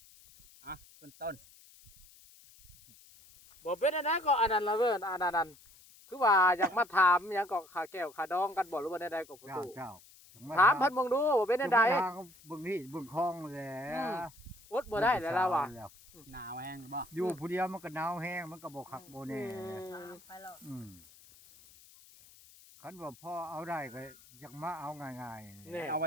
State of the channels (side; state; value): left; noise; hiss, 24 dB below the sound